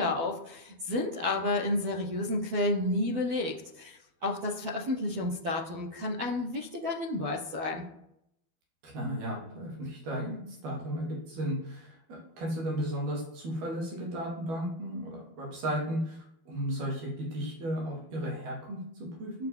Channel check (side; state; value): left; late; 12 ms